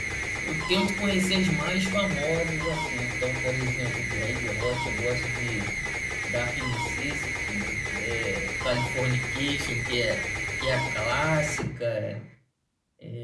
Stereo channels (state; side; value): identical; both; correlation 1.00